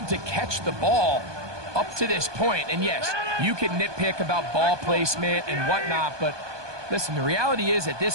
to catch the ball up to this point. And yes, you can nitpick about ball placement and whatnot, but listen, the reality is at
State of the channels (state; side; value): late; left; 1.2 ms